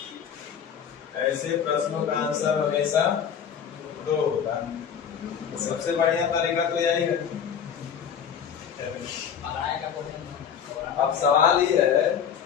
ऐसे प्रश्नों का आंसर हमेशा 2 होता है। तो सबसे बढ़िया तरीका तो यही है। अब सवाल ये है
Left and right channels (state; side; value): quieter; right; 7.9 dB